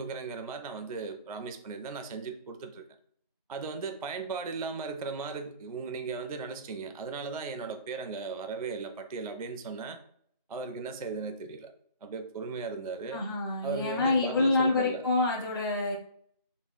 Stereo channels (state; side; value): inverted; both; correlation -0.45